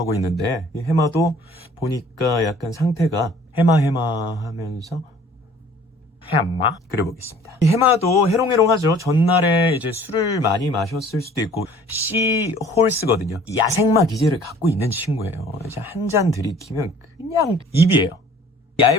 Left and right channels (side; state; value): both; normal; correlation 0.52